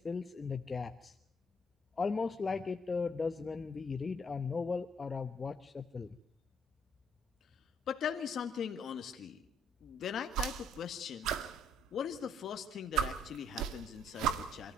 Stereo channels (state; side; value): normal; both; correlation 0.68